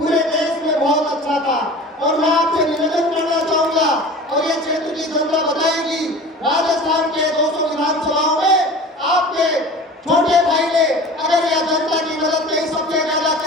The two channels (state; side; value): normal; both; correlation 0.38